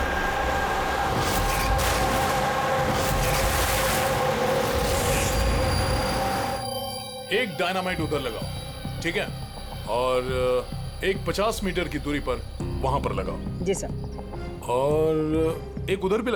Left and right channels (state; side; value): identical; both; correlation 1.00